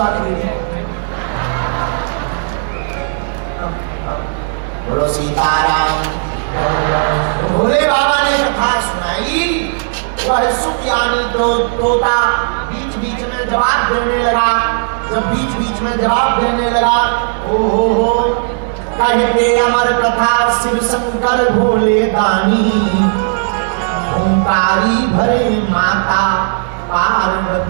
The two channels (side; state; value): left; silent; digital silence